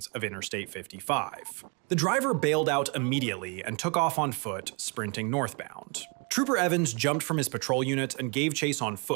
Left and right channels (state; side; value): quieter; left; 34.1 dB